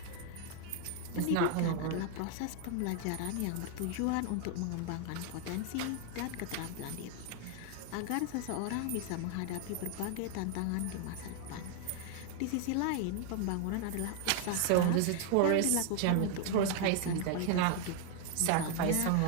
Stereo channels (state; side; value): different; both; correlation 0.00